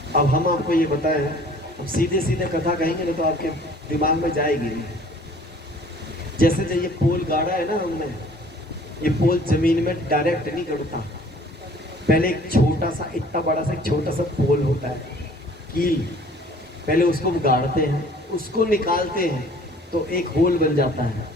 अब हम आपको ये बताएं, हम सीधे सीधे कथा कहेंगे ना तो आपके दिमाग में जाएगी नहीं। जैसे जो ये पोल गाड़ा है ना हमने, ये पोल जमीन में डायरेक्ट नहीं गड़ता। पहले एक छोटा सा, इतना बड़ा सा एक छोटा सा पोल होता है, कील। पहले उसको गाड़ते हैं, उसको निकालते हैं तो एक होल बन जाता है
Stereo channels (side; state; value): both; normal; correlation 0.52